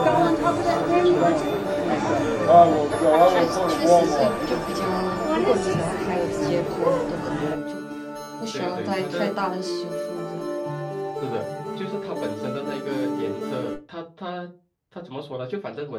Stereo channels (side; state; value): both; identical; correlation 1.00